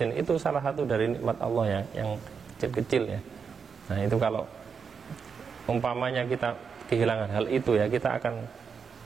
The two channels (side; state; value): left; quieter; 6.0 dB